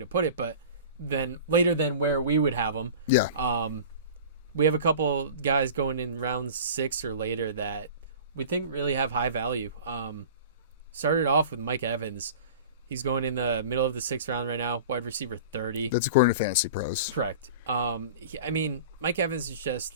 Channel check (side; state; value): both; inverted; correlation -0.38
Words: put it, but then later than where we would have them. Yeah. We have a couple guys going in round 6 or later that we think really have high value. Started off with Mike Evans. He's going in the middle of the 6th round right now, wide receiver 30. That's according to Fantasy Pros. Correct. Mike Evans is